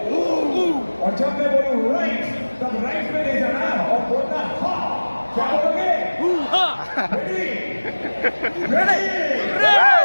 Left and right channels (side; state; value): both; inverted; correlation -1.00